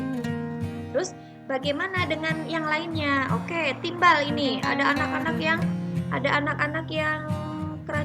Terus bagaimana dengan yang lainnya? Oke, timbal ini ada anak-anak yang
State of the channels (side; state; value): both; identical; correlation 1.00